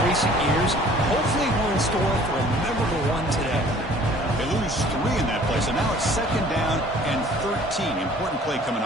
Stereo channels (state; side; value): normal; both; correlation 0.52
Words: recent years. Hopefully we're in store for a memorable one today. They lose 3 in that play, so now it's second down and 13. Important play coming